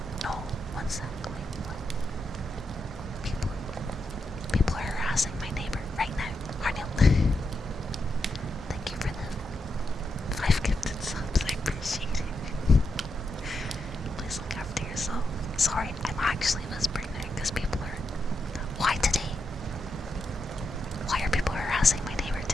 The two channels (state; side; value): normal; both; correlation 0.84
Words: No, one sec. Wait, what? People are harassing my neighbor right now. Arnil. Thank you for the 5 gifted subs. I appreciate it. Please look after yourself. Sorry, I'm actually whispering there because people are... Why today? Why are people harassing my neighbor